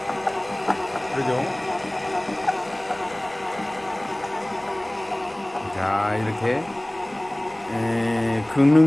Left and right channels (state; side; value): noise; left; rumble, 28 dB below the sound